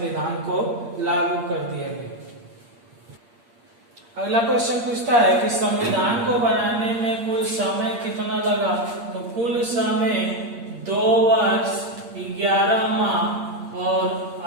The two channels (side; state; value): left; late; 8.6 ms